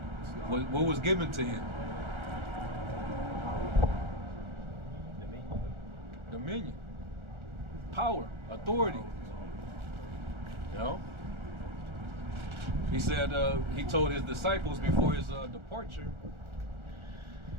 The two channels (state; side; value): late; left; 1.4 ms